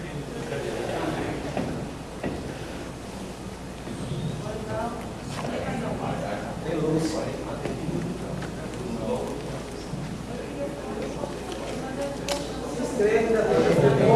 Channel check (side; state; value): both; identical; correlation 1.00